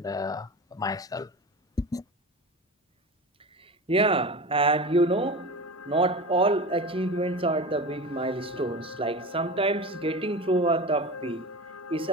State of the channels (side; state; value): both; normal; correlation 0.30